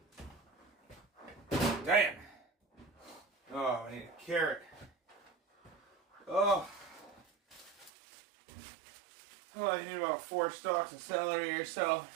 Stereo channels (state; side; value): drops out; left; at 7.9 s